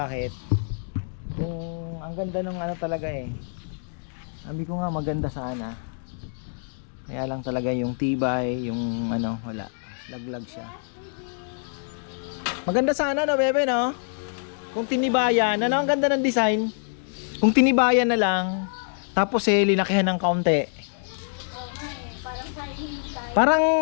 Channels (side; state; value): right; silent; digital silence